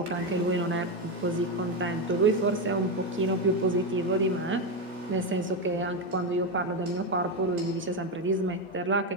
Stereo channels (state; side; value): normal; both; correlation 0.10